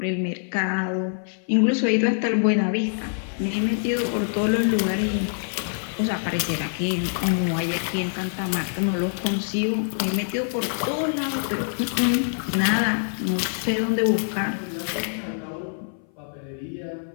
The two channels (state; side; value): silent; right; 57 dB below the other